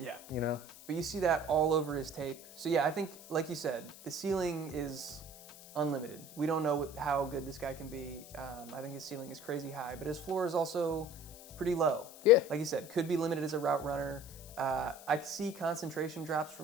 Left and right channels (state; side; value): noise; left; hiss, 18 dB below the sound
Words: But you see that all over his tape. So yeah, I think, like you said, the ceiling is unlimited. We don't know how good this guy can be. I think his ceiling is crazy high, but his floor is also pretty low. Yeah. Like you said, could be limited as a route runner. I see concentration drops